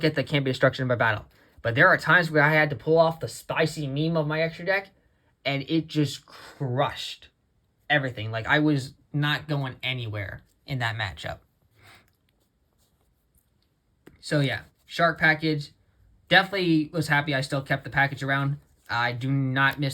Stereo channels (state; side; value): identical; both; correlation 1.00